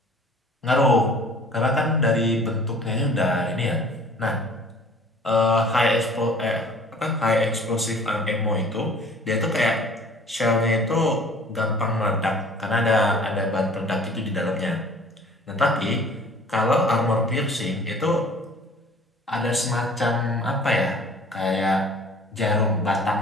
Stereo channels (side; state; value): both; normal; correlation 0.49